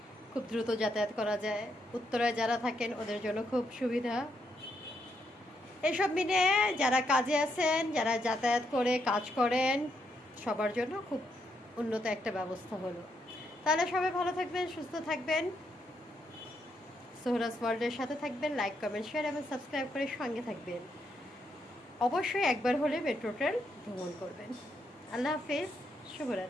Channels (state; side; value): normal; both; correlation 0.78